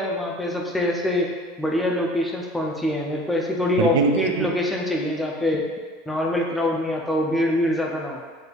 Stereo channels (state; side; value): normal; both; correlation 0.48